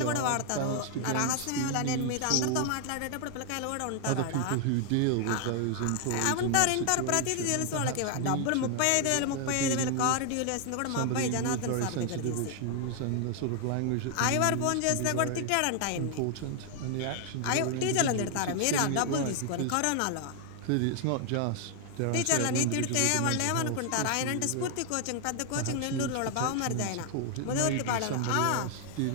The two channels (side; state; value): both; different; correlation 0.00